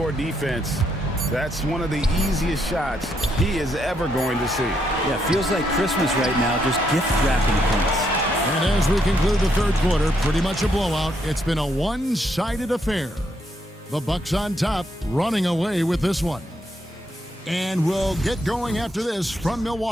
defense, that's one of the easiest shots he is ever going to see. Yeah, feels like Christmas right now, just gift wrapping points. And as we conclude the third quarter, pretty much a blowout. It's been a one-sided affair. The Bucks on top, running away with this one. And we'll get going after this from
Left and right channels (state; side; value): normal; both; correlation 0.76